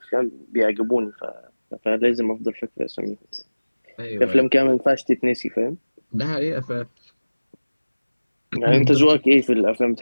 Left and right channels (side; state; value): both; inverted; correlation -1.00